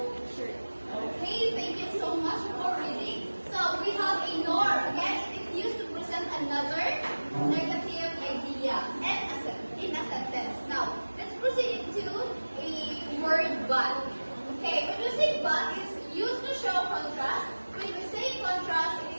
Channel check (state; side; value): inverted; both; correlation -1.00